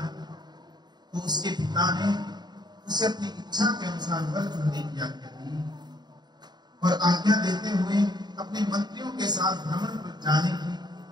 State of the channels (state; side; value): late; left; 0.20 ms